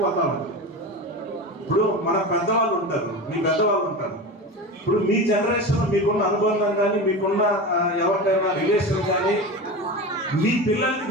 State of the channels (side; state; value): both; normal; correlation 0.27